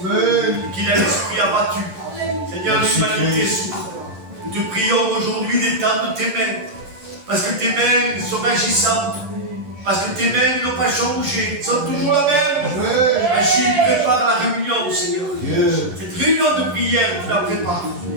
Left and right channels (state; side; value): late; left; 11 ms